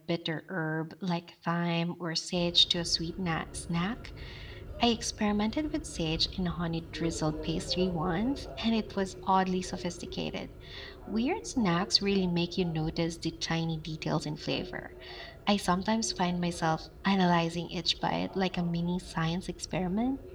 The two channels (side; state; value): both; identical; correlation 1.00